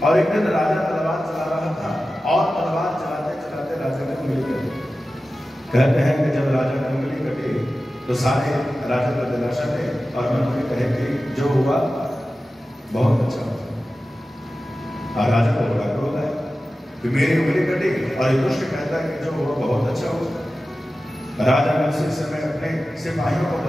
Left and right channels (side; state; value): both; normal; correlation 0.94